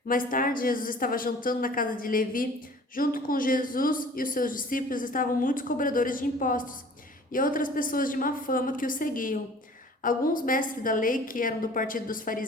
Mais tarde, Jesus estava jantando na casa de Levi. Junto com Jesus e os seus discípulos estavam muitos cobradores de impostos e outras pessoas de má fama que o seguiam. Alguns mestres da lei, que eram do partido dos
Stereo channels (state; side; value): normal; both; correlation 0.48